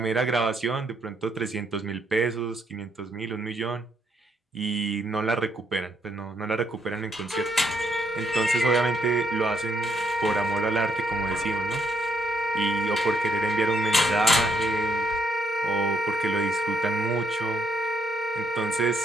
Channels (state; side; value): normal; both; correlation 0.74